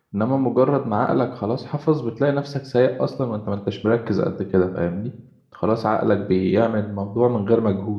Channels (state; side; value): identical; both; correlation 1.00